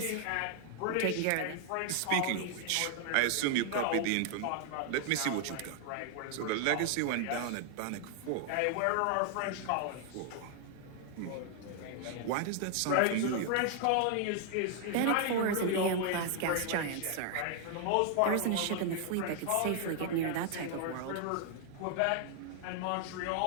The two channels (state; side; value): different; both; correlation 0.00